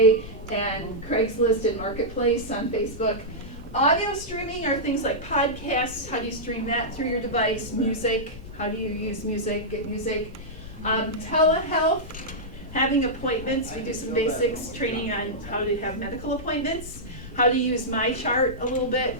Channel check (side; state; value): left; noise; rumble, 13 dB below the sound